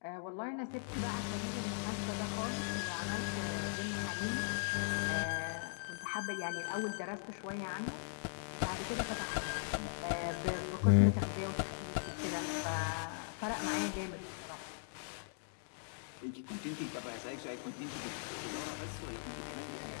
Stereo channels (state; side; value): silent; right; digital silence